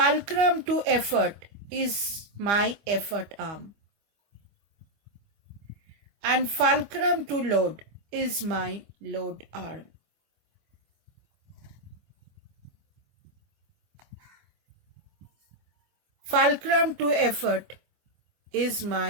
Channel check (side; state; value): left; late; 25 ms